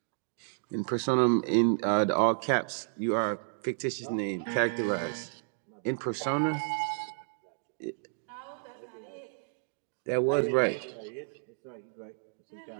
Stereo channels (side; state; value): left; silent; digital silence